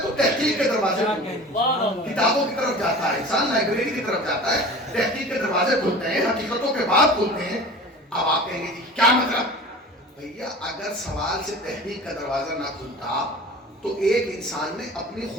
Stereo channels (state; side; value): normal; both; correlation 0.39